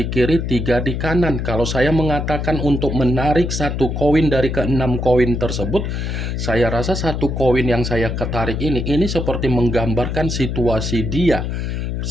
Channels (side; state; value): left; noise; hum, 2 dB below the sound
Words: kiri, 3 di kanan. Kalau saya mengatakan untuk menarik satu koin dari ke-6 koin tersebut, saya rasa satu koin yang saya ketarik ini seperti menggambarkan situasi dia